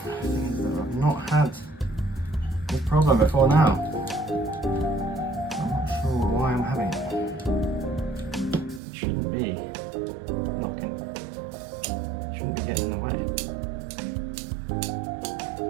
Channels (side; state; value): left; drops out; at 8.8 s